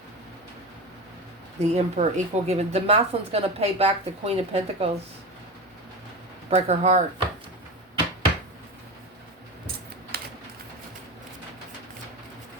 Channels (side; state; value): both; normal; correlation 0.25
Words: The Emperor, equal given. The masculine's going to pay back the Queen of Pentacles. Break her heart.